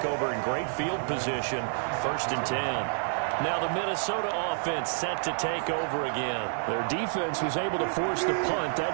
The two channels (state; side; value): silent; left; digital silence